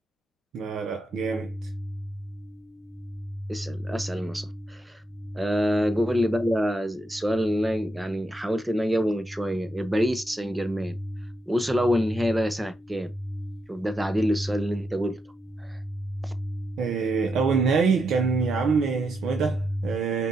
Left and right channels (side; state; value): both; normal; correlation 0.83